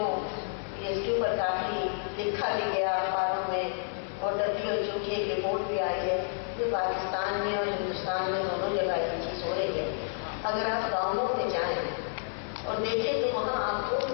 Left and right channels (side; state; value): right; silent; 58 dB below the other